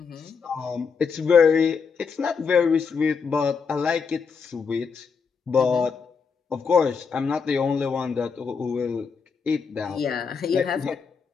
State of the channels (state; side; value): quieter; right; 5.7 dB